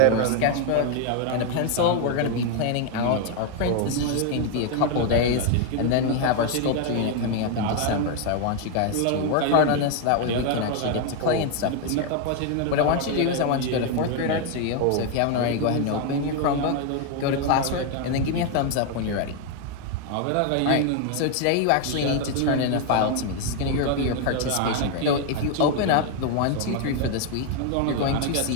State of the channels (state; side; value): different; both; correlation 0.01